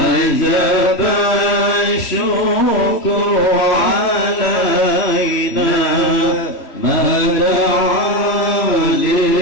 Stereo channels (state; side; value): late; right; 3.0 ms